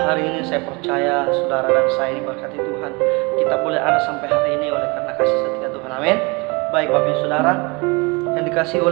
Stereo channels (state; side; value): quieter; left; 28.0 dB